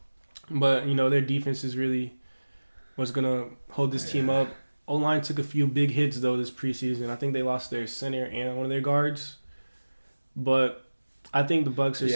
But, their defense is really what's going to hold this team up. O-line took a few big hits, though, this preseason. I think they lost their center and one of their guards. But I think the Bucs are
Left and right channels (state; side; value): inverted; both; correlation -1.00